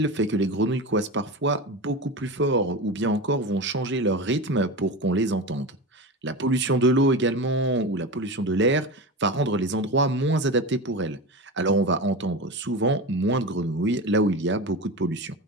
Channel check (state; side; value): normal; both; correlation 0.25